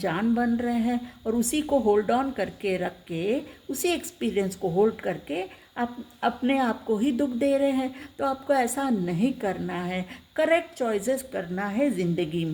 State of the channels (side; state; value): both; identical; correlation 1.00